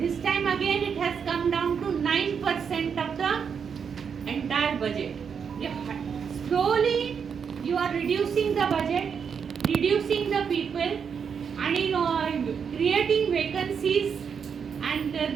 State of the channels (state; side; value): quieter; left; 6.7 dB